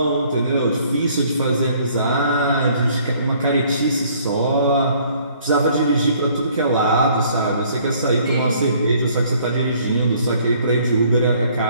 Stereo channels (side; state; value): both; inverted; correlation -0.60